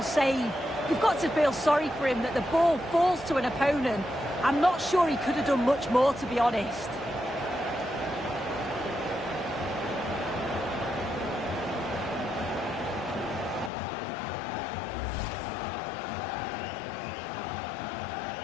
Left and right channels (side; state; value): right; drops out; at 13.7 s